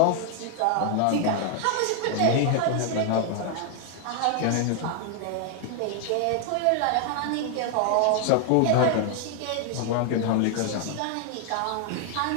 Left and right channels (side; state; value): both; different; correlation 0.00